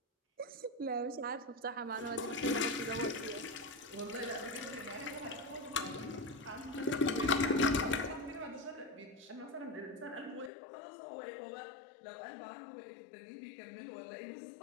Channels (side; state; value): right; drops out; at 10.5 s